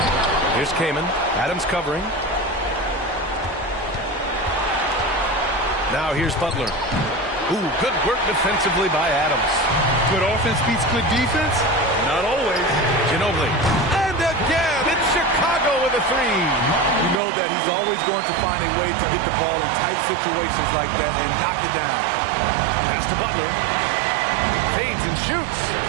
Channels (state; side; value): drops out; left; at 17.2 s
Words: Here's Kaman. Adams covering. Now here's Butler. Ooh, good work defensively by Adams. Good offense beats good defense? Not always. Ginobili. And again, it's Chicago with a three. You know that he's always going to find a way to get the ball in tight situations like that and knock it down. Pass to Butler. Fades and shoots.